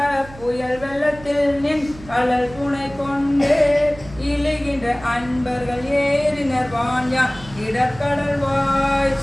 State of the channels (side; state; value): right; noise; hum, 18 dB below the sound